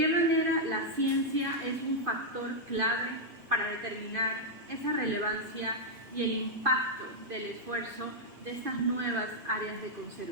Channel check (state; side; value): normal; both; correlation -0.04